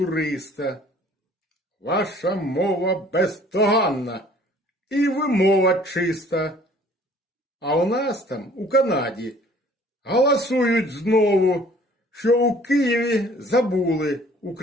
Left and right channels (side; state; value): both; normal; correlation 0.54